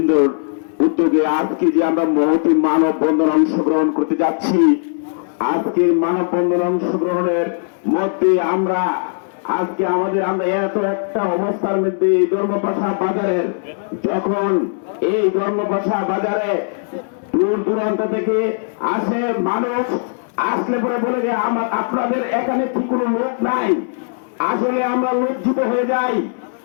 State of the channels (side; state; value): right; silent; 67 dB below the other